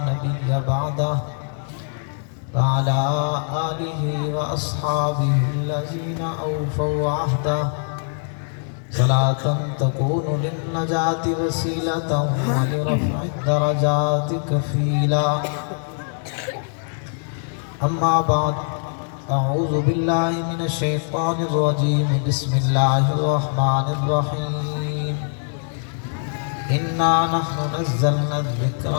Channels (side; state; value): right; silent; 62 dB below the other